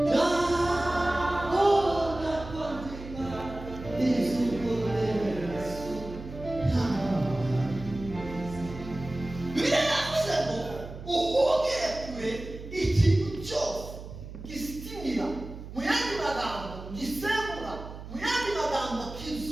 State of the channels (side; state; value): right; noise; hum, 12 dB below the sound